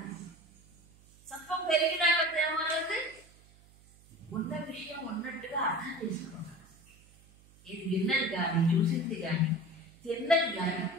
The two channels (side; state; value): right; noise; hum, 26 dB below the sound